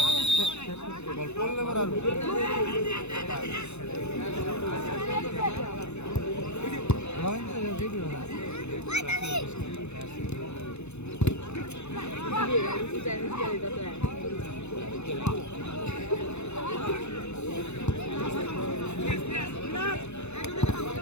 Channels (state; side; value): late; right; 0.81 ms